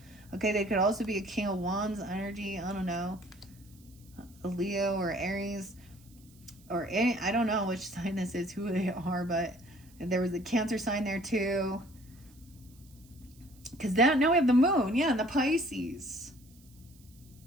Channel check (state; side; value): noise; right; hiss, 27 dB below the sound